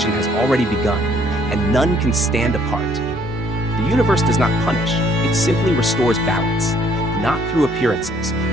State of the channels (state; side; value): normal; both; correlation 0.63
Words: has already begun, and none can stand apart. The universe does not punish, it simply restores balance, not through appearances,